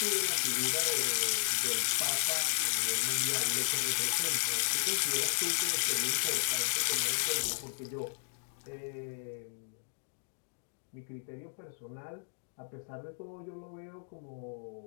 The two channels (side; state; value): right; silent; digital silence